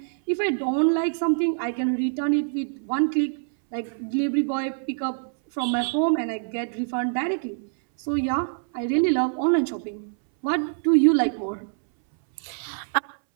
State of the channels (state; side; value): silent; left; 62 dB below the other